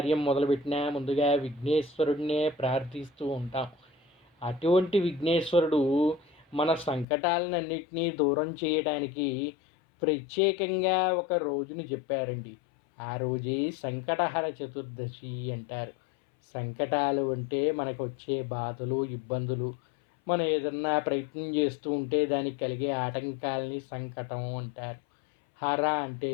మొదలుపెట్టినా ముందుగా విఘ్నేశ్వరుడినే ప్రార్థిస్తూ ఉంటాం. అటువంటి విఘ్నేశ్వరుడు మన సంకటాలన్నింటినీ దూరం చేయడానికి ప్రత్యేకంగా ఒక రోజుని చెప్పారండి. ఆ రోజే సంకటహర చతుర్దశి అంటారు. సంకటాలు అంటే మనకు వచ్చే బాధలు, ఇబ్బందులు, మనం ఏదన్నా ప్రయత్నం చేస్తూ ఉంటే దానికి కలిగే ఆటంకాలని సంకటం అంటారు. హర అంటే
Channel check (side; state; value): right; drops out; at 7.1 s